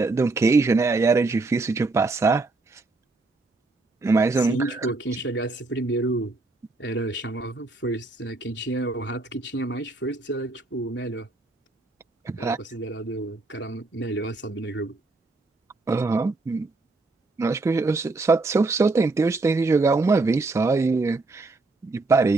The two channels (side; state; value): left; quieter; 3.4 dB